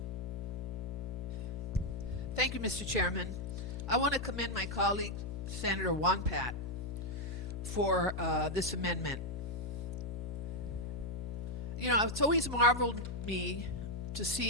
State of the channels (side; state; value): left; noise; hum, 5 dB below the sound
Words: Thank you, Mr. Chairman. I want to commend my colleague, Senator Wampat, for this amendment. It's always marveled me to